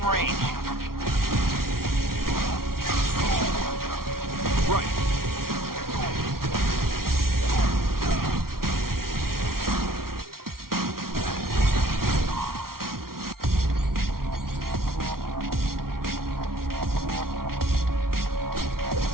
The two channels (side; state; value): left; late; 0.93 ms